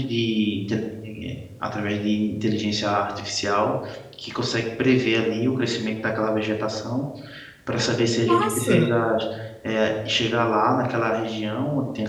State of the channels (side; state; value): both; identical; correlation 1.00